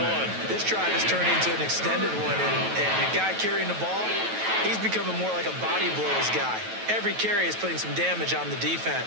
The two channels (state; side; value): late; left; 9.2 ms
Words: 1. This drive has turned into an extended one, and the guy carrying the ball, he's becoming more like a body blows guy. Every carry is putting some damage on the